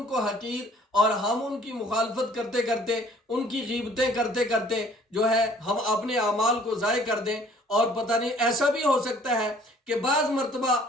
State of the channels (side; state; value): both; normal; correlation 0.56